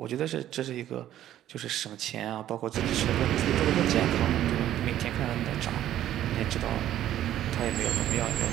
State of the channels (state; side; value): quieter; left; 12.2 dB